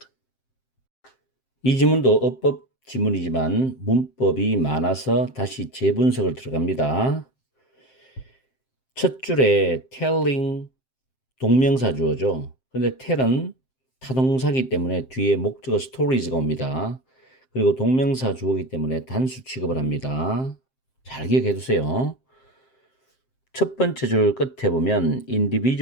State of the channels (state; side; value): late; right; 7.6 ms